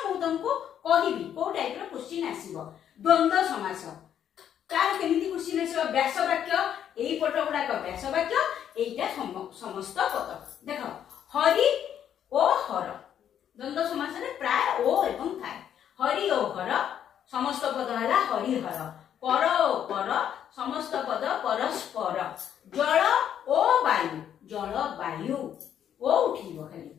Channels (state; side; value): quieter; right; 9.6 dB